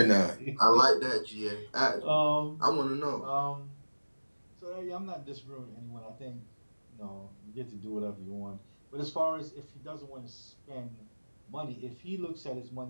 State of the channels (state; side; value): inverted; both; correlation -1.00